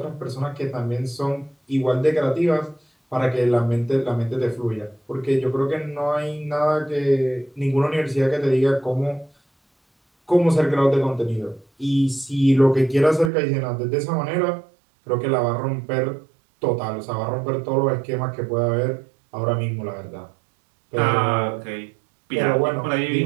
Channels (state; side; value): drops out; left; at 13.3 s